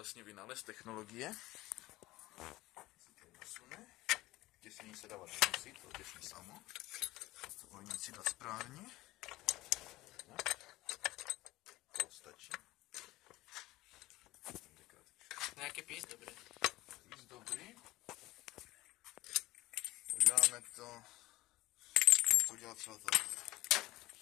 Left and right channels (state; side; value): quieter; right; 18.4 dB